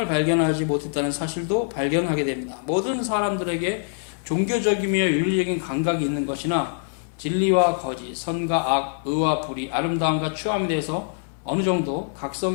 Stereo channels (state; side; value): silent; right; digital silence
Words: 발견하지 못했다는 사실도 발견하게 됩니다. 모든 사람들에게 종교적이며 윤리적인 감각이 있는 것이나 진리와 거짓, 선과 악, 의와 불의, 아름다움과 추함에 대해서 어느 정도